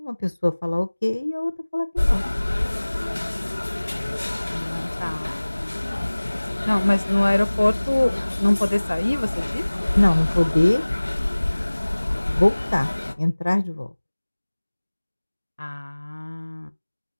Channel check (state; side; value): inverted; both; correlation -1.00